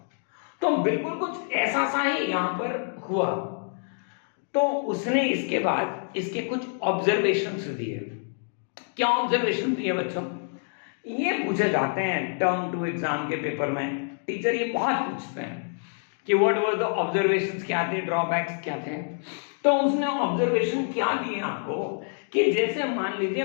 तो बिल्कुल कुछ ऐसा सा ही यहां पर हुआ। तो उसने इसके बाद इसके कुछ ऑब्जर्वेशंस दिए। क्या ऑब्जर्वेशन दिए बच्चों, ये पूछे जाते हैं टर्म 2 एग्जाम के पेपर में, टीचर ये बहुत पूछते हैं कि व्हाट वर द ऑब्जर्वेशंस, क्या थे ड्रॉबैक्स क्या थे। तो उसने ऑब्जर्वेशन क्या दिए आपको कि जैसे मान लीजिए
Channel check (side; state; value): right; silent; 60 dB below the other